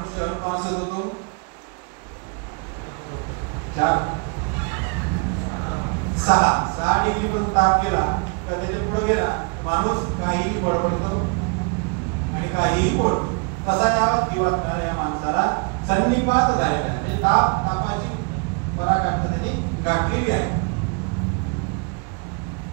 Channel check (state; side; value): quieter; left; 34.7 dB